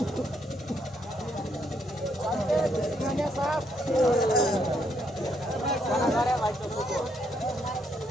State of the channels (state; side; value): normal; both; correlation 0.74